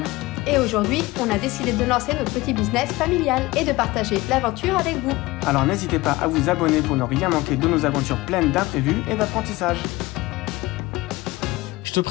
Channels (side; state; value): right; quieter; 20.3 dB